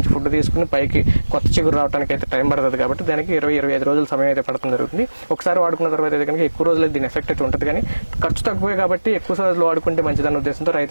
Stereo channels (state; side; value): inverted; both; correlation -1.00